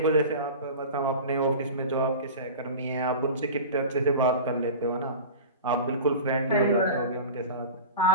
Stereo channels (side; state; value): both; inverted; correlation -0.33